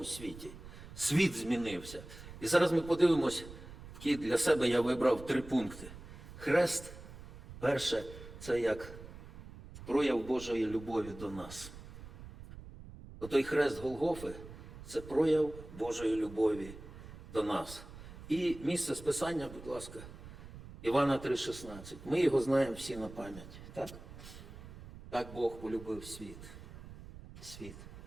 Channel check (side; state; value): right; noise; rumble, 15 dB below the sound